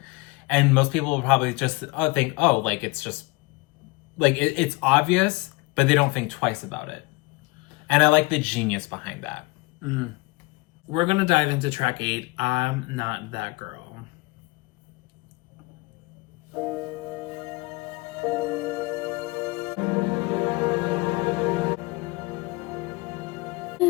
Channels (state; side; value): quieter; right; 24.8 dB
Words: And most people will probably just think, oh, like, it's just, like, it's obvious, but they don't think twice about it. And I like the genius behind that. Mm. We're going to dive into track 8, I'm Not That Girl.